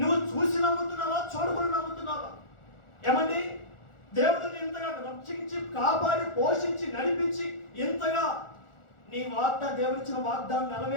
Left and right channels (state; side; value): late; right; 1.4 ms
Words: చూసి నమ్ముతున్నావా, చూడకుండా నమ్ముతున్నావా? ఏమండి దేవుడిని ఇంతగా రక్షించి కాపాడి పోషించి నడిపించి ఇంతగా నీ దేవుడిచ్చిన వాగ్దానం